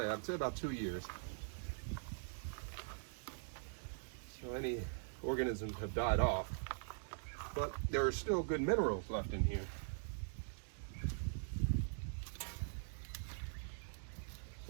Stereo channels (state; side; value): silent; left; digital silence